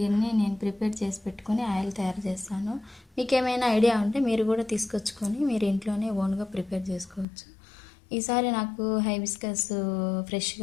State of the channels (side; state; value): right; drops out; at 7.2 s